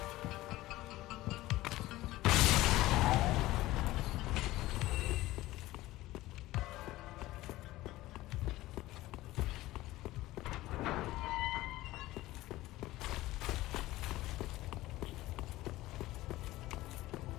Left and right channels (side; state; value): right; quieter; 17.3 dB